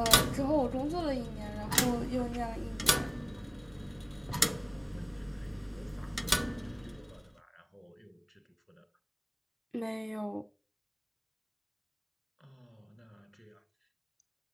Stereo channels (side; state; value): both; identical; correlation 1.00